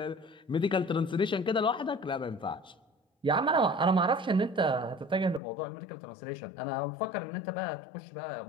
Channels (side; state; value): right; drops out; at 5.4 s